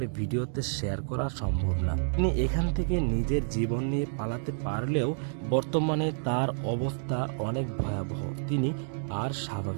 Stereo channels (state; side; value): silent; left; digital silence